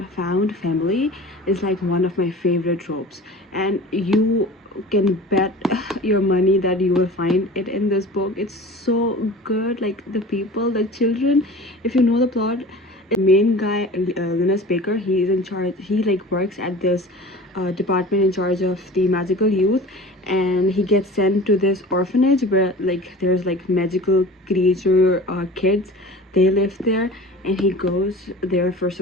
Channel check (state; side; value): normal; both; correlation 0.39